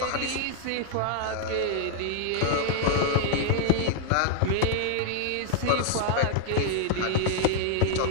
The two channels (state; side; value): different; both; correlation -0.01